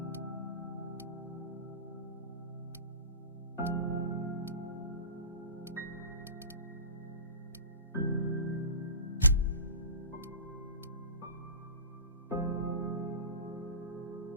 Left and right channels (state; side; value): inverted; both; correlation -0.33